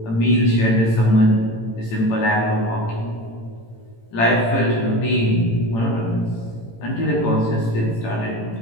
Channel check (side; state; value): right; late; 18 ms